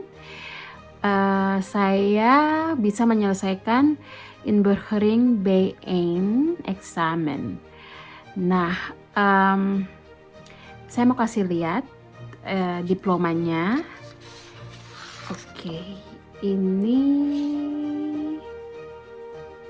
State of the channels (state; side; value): identical; both; correlation 1.00